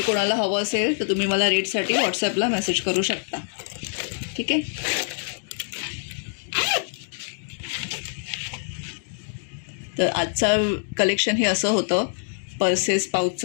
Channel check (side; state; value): right; silent; digital silence